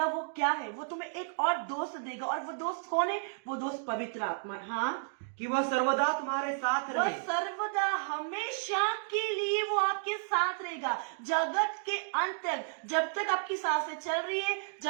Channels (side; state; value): left; silent; digital silence